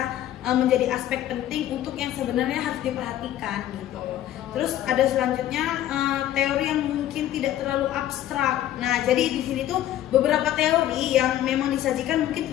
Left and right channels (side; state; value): right; quieter; 12.5 dB